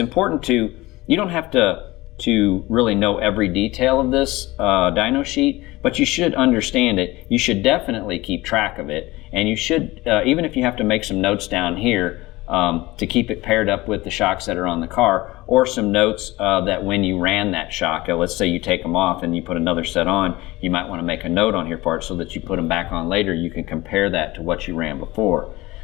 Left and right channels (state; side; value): quieter; right; 20.1 dB